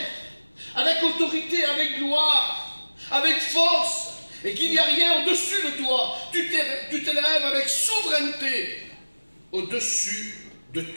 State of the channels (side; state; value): both; inverted; correlation -1.00